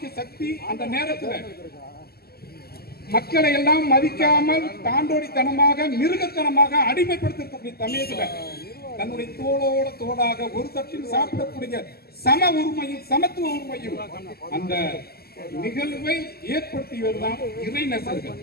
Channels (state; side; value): late; right; 0.46 ms